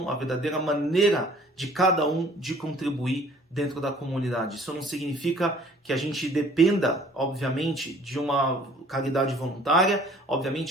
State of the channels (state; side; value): normal; both; correlation 0.54